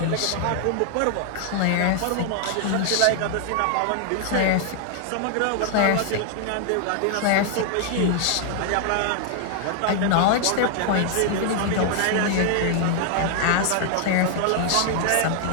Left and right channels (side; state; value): both; different; correlation 0.00